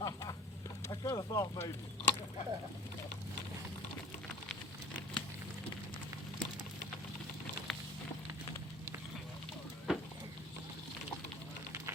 kind of thought maybe.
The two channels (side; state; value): both; normal; correlation 0.44